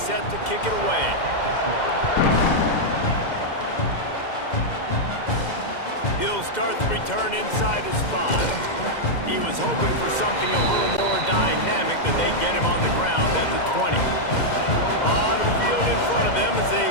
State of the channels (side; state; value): right; late; 2.1 ms